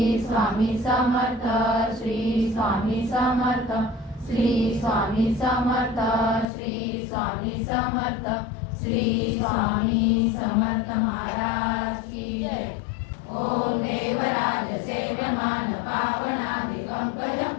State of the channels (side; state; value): right; drops out; at 6.5 s